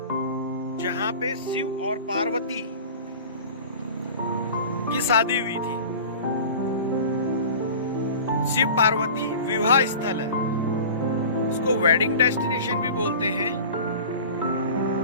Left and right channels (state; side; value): inverted; both; correlation -0.39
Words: जहाँ पे शिव और पार्वती की शादी हुई थी। शिव पार्वती विवाह स्थल है, इसको वेडिंग डेस्टिनेशन भी बोलते हैं।